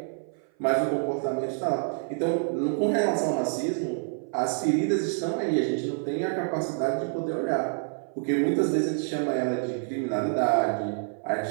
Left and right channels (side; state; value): left; silent; 57 dB below the other